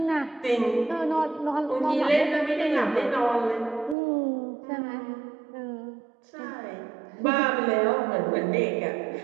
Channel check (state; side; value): drops out; left; at 4.0 s